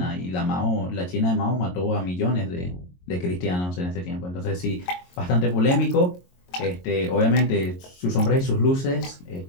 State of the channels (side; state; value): right; late; 22 ms